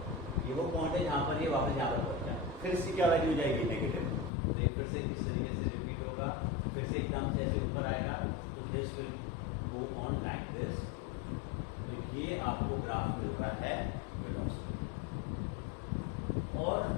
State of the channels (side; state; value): right; drops out; at 4.3 s